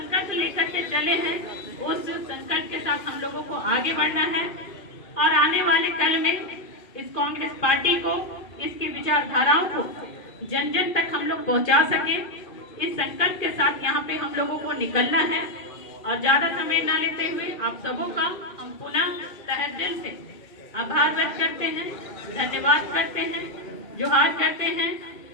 लेकर के चले हैं, उस संकल्प के साथ हम लोगों को आगे बढ़ना है और आने वाले कल में इस कांग्रेस पार्टी को, इसकी विचारधाराओं को जन जन तक हम लोग पहुंचा सके। इस संकल्प के साथ यहाँ पे हम लोगों को निकलना है और ज्यादा समय ना लेते हुए आप सबों का हम पुनः तहे दिल से आभार व्यक्त करते हैं, धन्यवाद करते हैं, जोहार करते हैं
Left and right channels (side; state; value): right; late; 2.5 ms